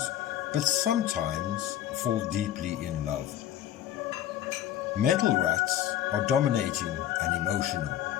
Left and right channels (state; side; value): quieter; right; 11.7 dB